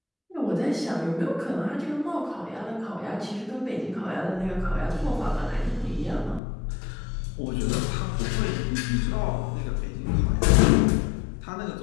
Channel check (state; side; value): drops out; right; at 6.4 s